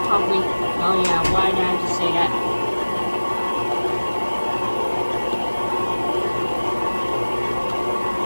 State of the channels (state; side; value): inverted; both; correlation -1.00